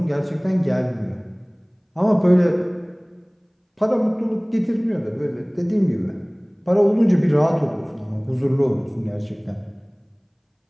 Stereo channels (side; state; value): both; identical; correlation 1.00